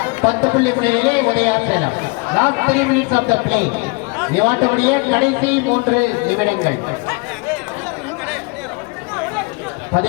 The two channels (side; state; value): right; quieter; 28.5 dB